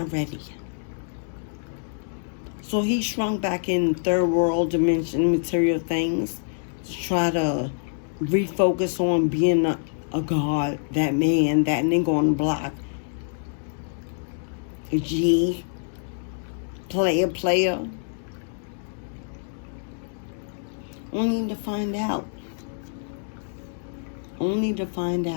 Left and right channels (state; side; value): silent; right; digital silence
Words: ready. So he shrunk back in third world dimension material things to try to refocus on being a god, that man, that nigga on the block. A G, player. Only to find out.